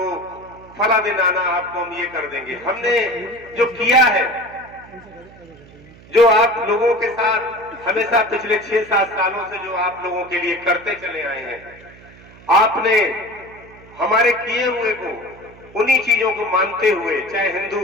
फला दिन आना, आपको हम ये कर देंगे। हमने जो किया है, जो आप लोगों के साथ हमेशा पिछले 6-7 सालों से जो आप लोगों के लिए करते चले आए हैं, आपने हमारे किए हुए को, उन्हीं चीजों को मानते हुए, चाहे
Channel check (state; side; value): noise; right; hum, 22 dB below the sound